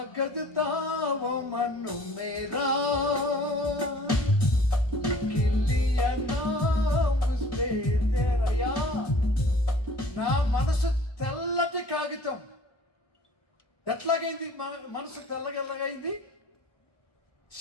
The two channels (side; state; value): right; late; 1.2 ms